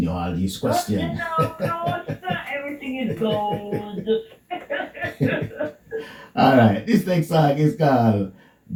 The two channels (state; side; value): identical; both; correlation 1.00